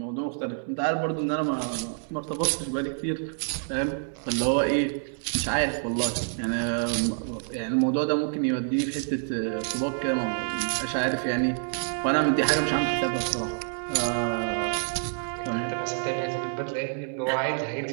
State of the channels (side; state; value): left; silent; digital silence